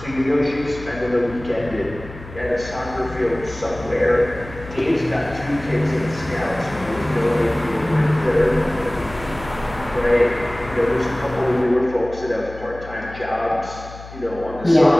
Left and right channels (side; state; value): left; noise; hum, 15 dB below the sound